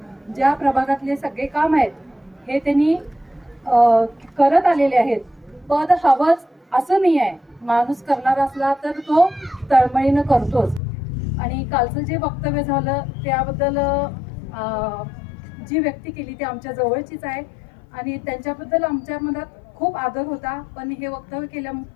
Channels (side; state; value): right; drops out; at 10.8 s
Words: ज्या प्रभागातले सगळे काम आहेत हे त्यांनी करत आलेले आहेत. पद हवंच असं नाही आहे, माणूस करणार असला तर तो तळमळीनं करतोच. आणि कालचं जे वक्तव्य झालं त्याबद्दल जी व्यक्ती केली ती आमच्या जवळचीच आहे आणि त्यांच्याबद्दल आमच्या मनात खूप आदर होता. पण हे वक्तव्य